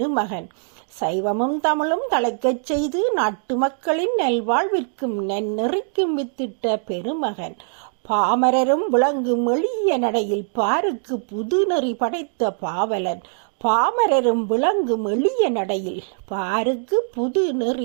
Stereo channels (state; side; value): silent; left; digital silence